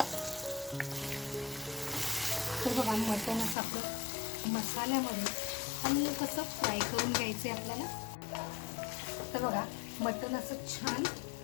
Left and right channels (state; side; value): drops out; right; at 3.6 s